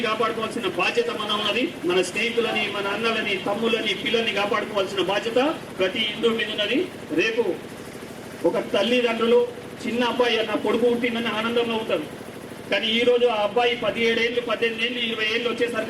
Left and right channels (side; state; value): both; identical; correlation 1.00